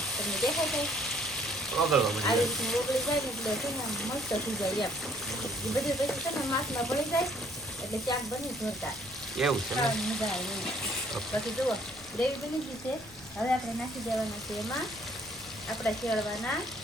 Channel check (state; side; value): noise; left; rumble, 22 dB below the sound